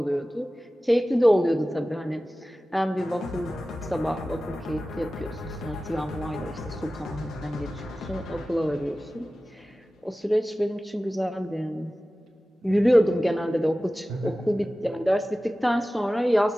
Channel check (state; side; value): normal; both; correlation 0.96